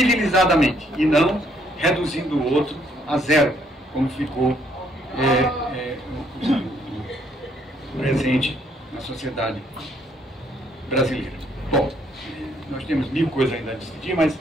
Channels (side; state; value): both; normal; correlation 0.68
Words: e não reduzindo o outro a zero, como ficou presente na sociedade brasileira. Bom, nós temos mil coisas ainda a discutir, mas